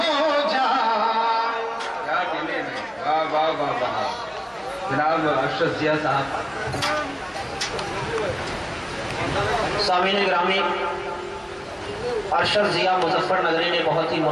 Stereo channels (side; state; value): both; identical; correlation 1.00